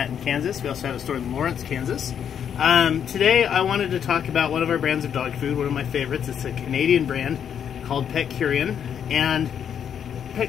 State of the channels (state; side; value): quieter; right; 8.4 dB